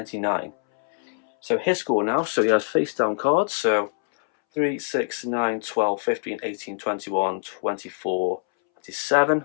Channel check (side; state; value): right; silent; 62 dB below the other